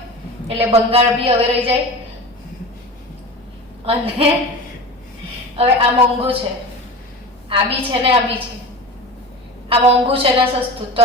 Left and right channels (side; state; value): both; normal; correlation 0.32